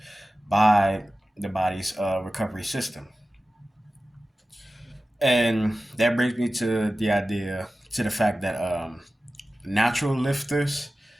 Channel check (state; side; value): normal; both; correlation 0.95